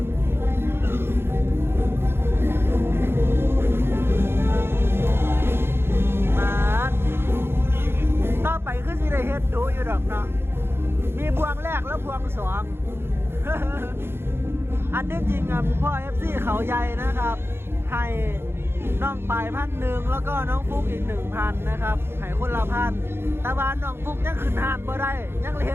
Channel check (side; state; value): left; late; 0.11 ms